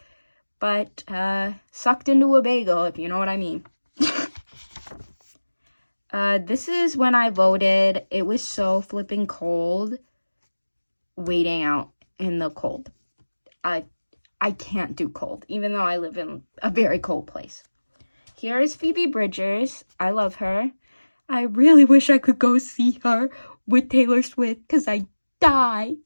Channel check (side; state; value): both; inverted; correlation -1.00